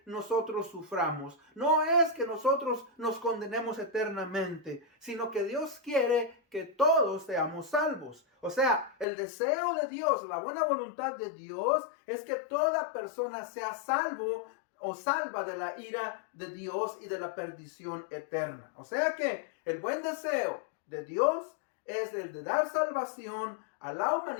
nosotros suframos, no es que nosotros nos condenemos eternamente, sino que Dios quiere que todos seamos salvos. O sea, el deseo de Dios, la buena voluntad de Dios es que toda persona sea salvo o salva de la ira de Dios y de la perdición eterna. O sea que el buen deseo de Dios es el de dar salvación a la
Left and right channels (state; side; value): drops out; right; at 9.1 s